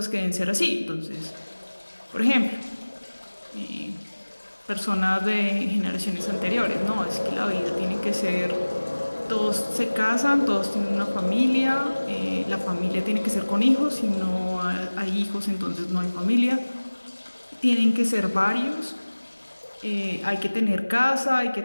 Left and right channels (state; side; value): inverted; both; correlation -1.00